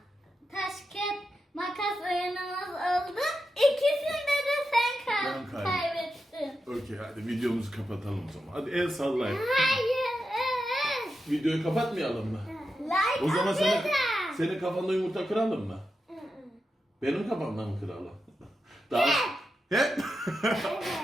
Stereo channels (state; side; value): normal; both; correlation 0.88